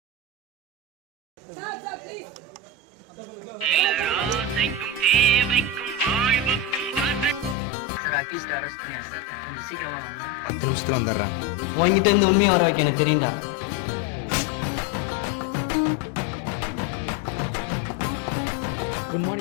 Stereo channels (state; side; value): drops out; right; at 7.6 s